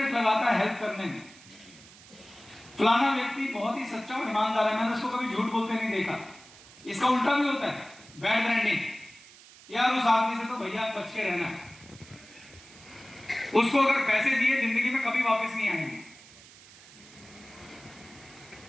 लगाता है हेल्प करने में। फलाना व्यक्ति बहुत ही सच्चा और ईमानदार है, मैंने उसको कभी झूठ बोलते नहीं देखा। इसका उल्टा भी होता है, बैड ब्रांडिंग। यार उस आदमी से तो भैया बच के रहना है, उसको अगर पैसे दिए जिंदगी में कभी वापस नहीं आएंगे।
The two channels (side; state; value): right; noise; hiss, 21 dB below the sound